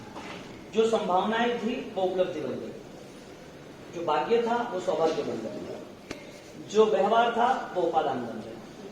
जो संभावनाएं थी वो उपलब्धि बन गई, जो भाग्य था वो सौभाग्य बन गया, जो व्यवहार था वो उपादान बन गया,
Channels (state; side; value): identical; both; correlation 1.00